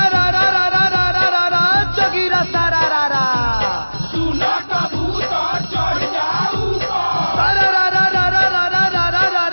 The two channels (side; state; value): both; inverted; correlation -1.00